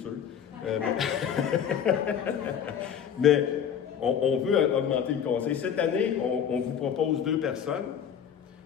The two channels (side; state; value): right; quieter; 8.4 dB